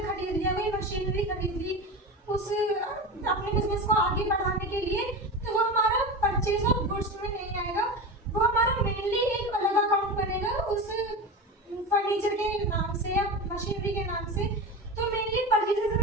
खरीद लिया, कोई मशीनरी खरीद ली उस अपने बिजनेस को आगे बढ़ाने के लिए, तो वो हमारा परचेज ऑफ गुड्स में नहीं आएगा, वो हमारा मेनली एक अलग अकाउंट बनेगा उस फर्नीचर के नाम से या मशीनरी के नाम से। तो मेनली परचेजेस हम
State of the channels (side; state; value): both; normal; correlation 0.25